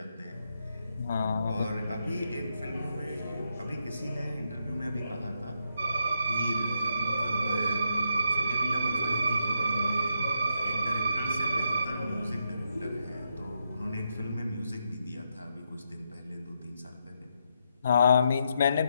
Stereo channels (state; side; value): inverted; both; correlation -0.80